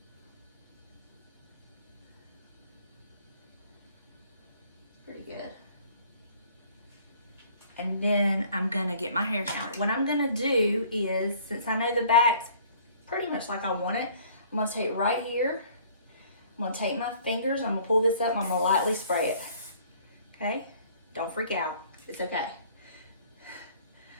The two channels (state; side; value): inverted; both; correlation -0.55